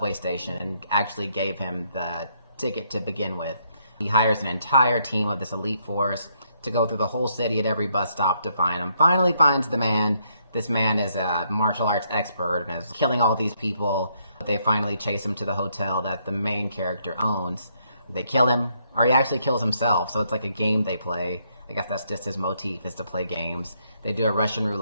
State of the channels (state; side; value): inverted; both; correlation -0.74